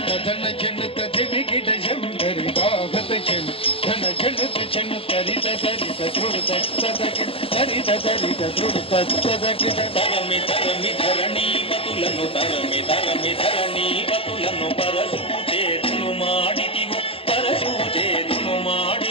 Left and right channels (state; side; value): late; right; 0.27 ms